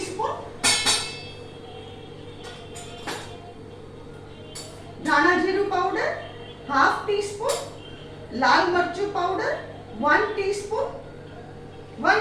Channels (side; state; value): both; identical; correlation 1.00